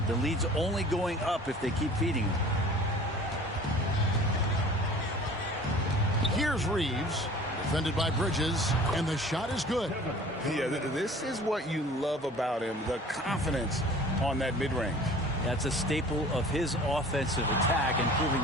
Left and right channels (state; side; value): normal; both; correlation 0.46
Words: The lead's only going up if they keep feeding him. Here's Reeves, defended by Bridges, and the shot is good. Yeah, this is what you love about him, the confidence on that mid-range. That's a staple of his offensive attack, and